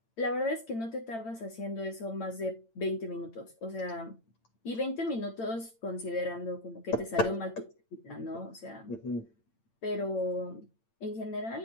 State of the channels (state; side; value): late; right; 8.8 ms